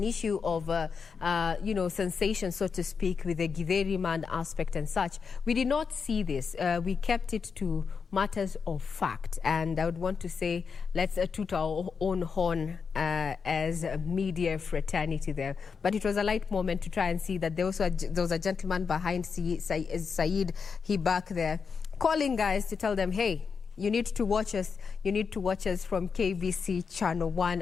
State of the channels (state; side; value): quieter; right; 5.7 dB